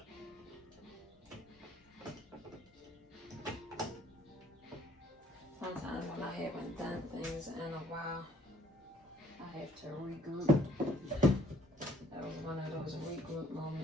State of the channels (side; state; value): both; normal; correlation 0.60